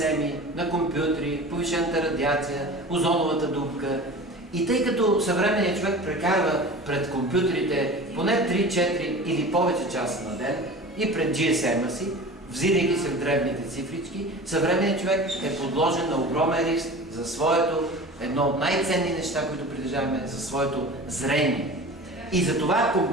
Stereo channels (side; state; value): both; normal; correlation 0.37